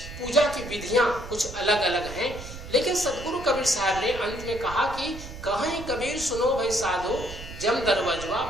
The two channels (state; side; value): noise; right; rumble, 12 dB below the sound